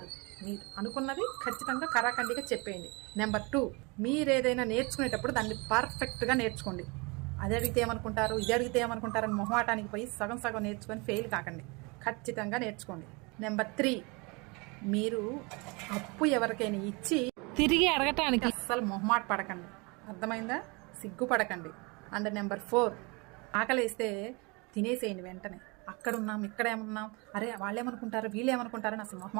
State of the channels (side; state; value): left; quieter; 28.6 dB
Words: మీరు అనుకున్నది ఖచ్చితంగా కరాఖండిగా చెప్పేయండి. నెంబర్ 2, మీరు ఏదైనా నేర్చుకునేటప్పుడు దాన్ని పర్ఫెక్ట్గా నేర్చుకోండి. అది అడిగితే ఏమనుకుంటారు, ఇది అడిగితే ఏమనుకుంటారు అని మొహమాటానికి పోయి సగం సగం నేర్చుకొని ఫెయిల్ కాకండి, ఖచ్చితంగా నేర్చుకోండి. నెంబర్ 3, మీరు అప్పు ఎవరికైనా ఇచ్చి తిరిగి అడగటానికి అస్సలు మొహమాట పడకండి, అర్థమైందా? సిగ్గుపడకండి. అండ్ నెంబర్ 4, ఆకలేస్తే తినేసేయండి వెంటనే. అక్కడున్నాం ఇక్కడేమున్నాం, అరే వాళ్ళేమనుకుంటారు వీళ్ళేమనుకుంటారని అసలు